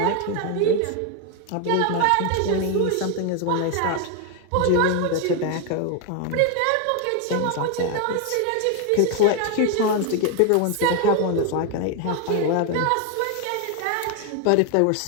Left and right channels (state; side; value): different; both; correlation 0.01